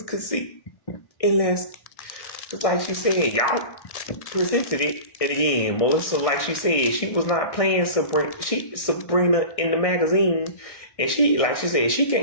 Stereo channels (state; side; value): late; right; 1.6 ms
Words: could see. Unless, just like she said, y'all presented it. And again, Melissa, like she said, she was not playing Sabrina in the magazine. And she, like she said, she